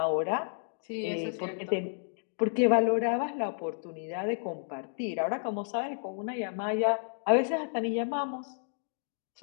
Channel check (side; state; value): right; silent; digital silence